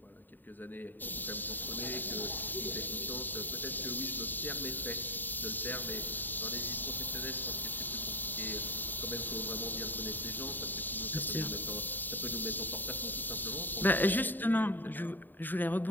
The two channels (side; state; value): right; late; 0.090 ms